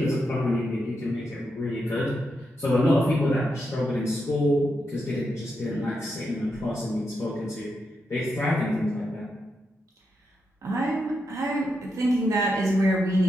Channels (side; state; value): both; normal; correlation 0.84